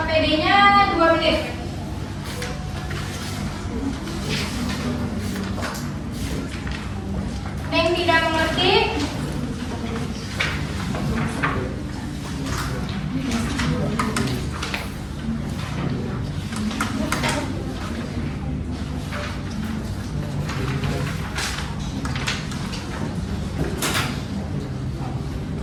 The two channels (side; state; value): both; identical; correlation 1.00